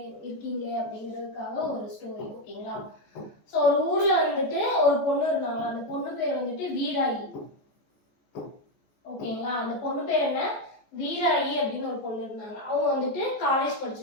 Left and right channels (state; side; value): late; right; 14 ms